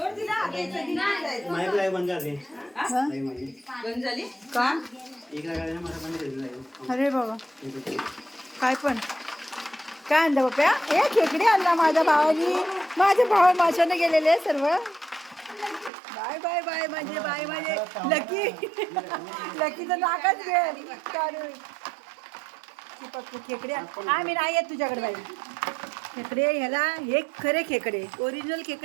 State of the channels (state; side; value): drops out; left; at 15.9 s